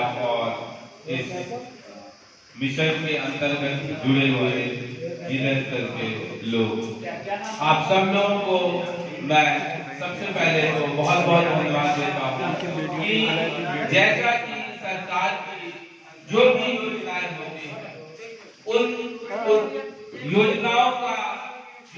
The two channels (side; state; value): both; identical; correlation 1.00